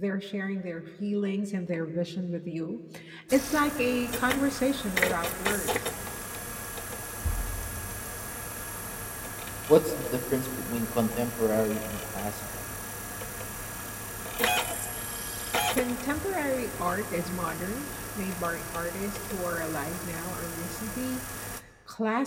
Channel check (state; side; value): identical; both; correlation 1.00